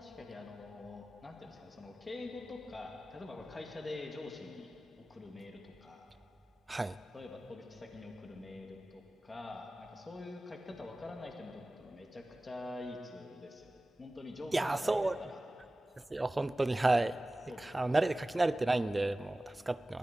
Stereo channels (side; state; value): both; normal; correlation 0.97